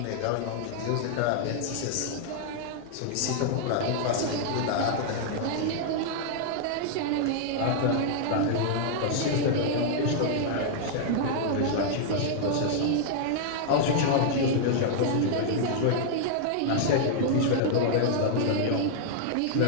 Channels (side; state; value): both; different; correlation -0.01